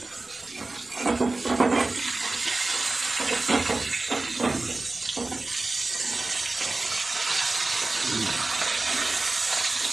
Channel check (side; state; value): left; quieter; 3.2 dB